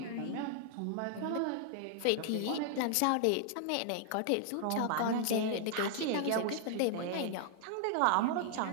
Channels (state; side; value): different; both; correlation 0.00